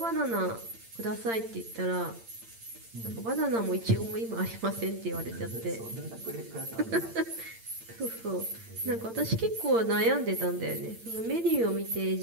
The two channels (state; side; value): late; left; 8.8 ms